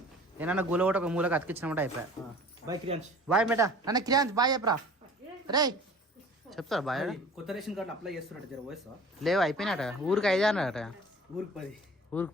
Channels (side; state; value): both; normal; correlation 0.45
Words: ఏమన్నా గుల ఒకటి ఒక మూలకి అతికించినమాట అయిపోయా. బాయ్ క్రియాంశ్. బాయ్ బేటా. నన్ను క్రియాంశ్ బాయ్ చెప్పరా. రే చెప్తారా బాయ్? కొత్త రేషన్ కార్డు అప్లై చేస్తున్నట్టు జర వయసు లేవు, అయిపోయినాట. ఊరికి 5 అన్నట. ఊరికి 10. ఊరికి